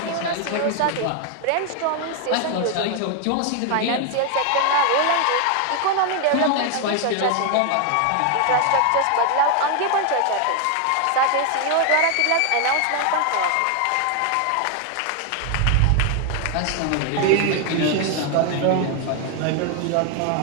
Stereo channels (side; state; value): both; different; correlation 0.00